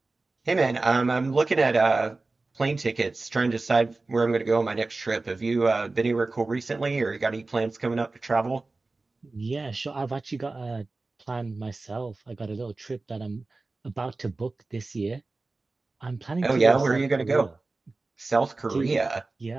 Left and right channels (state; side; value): quieter; left; 3.4 dB